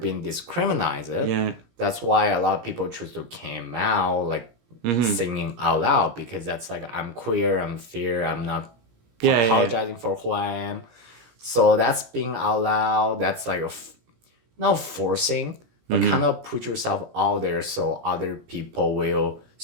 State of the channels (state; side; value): late; left; 17 ms